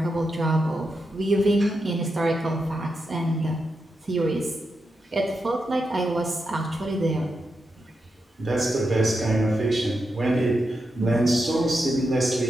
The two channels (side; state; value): both; normal; correlation 0.86